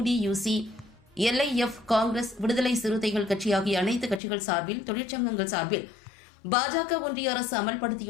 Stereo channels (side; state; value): right; drops out; at 4.2 s